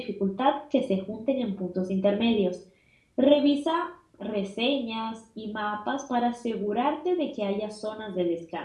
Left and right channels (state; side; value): identical; both; correlation 1.00